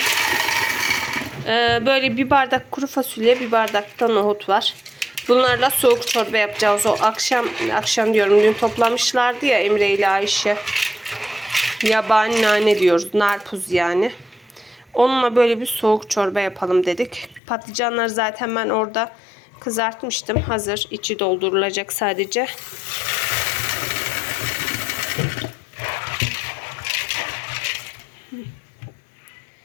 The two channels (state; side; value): drops out; right; at 17.4 s